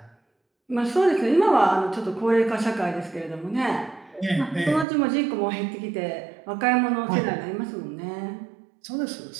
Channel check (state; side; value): drops out; left; at 4.9 s